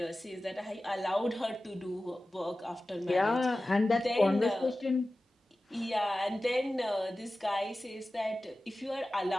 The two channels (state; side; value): normal; both; correlation 0.96